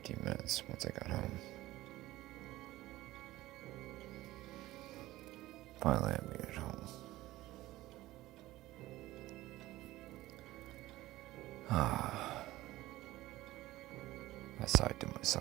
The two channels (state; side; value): quieter; left; 17.1 dB